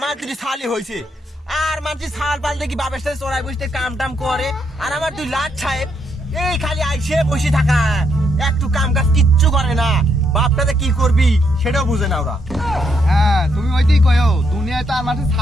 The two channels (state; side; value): normal; both; correlation 0.76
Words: দুটি সালই হয়েছে। আর মানুষ সালপাল দেখি বাবার সাথে চড়াই বসতে কাম টাম করে, আর আমার দুই লাট সাহেব এই খালি আইসে বসে থাকা, একটু কাম কাজ কিচ্ছু করে না। বাপটাতে কি করবি সেটাও বুঝে না ওরা। হ্যাঁ তুমি ওইটাই কয়ো, দুনিয়ায় তো আর মানুষের